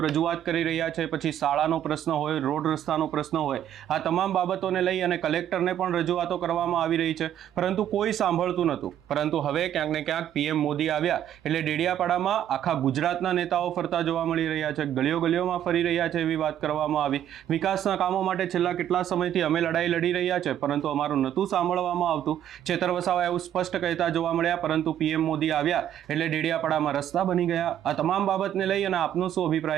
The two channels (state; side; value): quieter; left; 10.8 dB